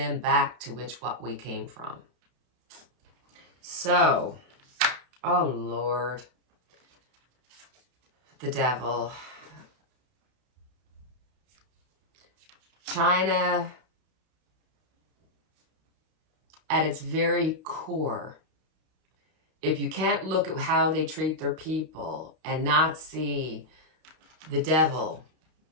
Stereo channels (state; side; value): late; left; 31 ms